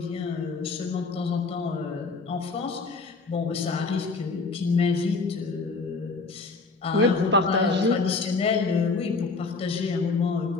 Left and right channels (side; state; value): right; quieter; 4.0 dB